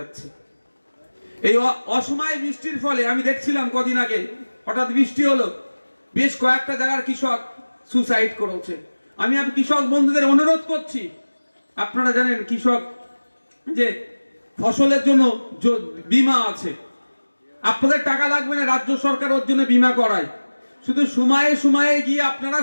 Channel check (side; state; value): both; inverted; correlation -1.00